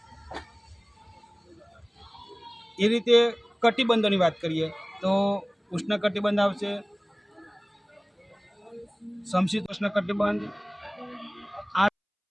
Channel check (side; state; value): both; identical; correlation 1.00